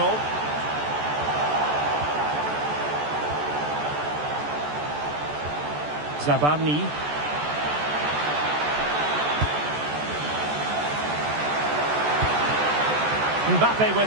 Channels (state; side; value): late; left; 14 ms